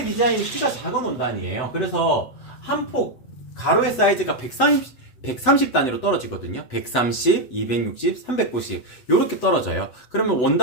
디자인이 키가 작은 원단이에요. 그래서 한 폭 가로의 사이즈가 130 단위로 떨어지거든요. 130, 260, 390 이렇게 떨어져요. 그러면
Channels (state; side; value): late; right; 8.0 ms